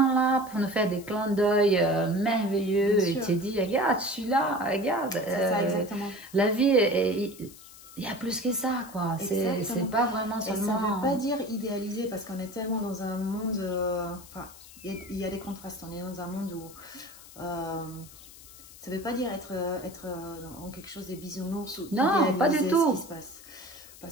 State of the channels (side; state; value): left; noise; hiss, 19 dB below the sound